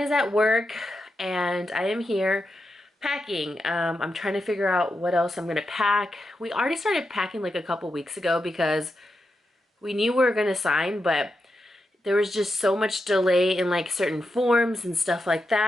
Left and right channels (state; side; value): normal; both; correlation 0.87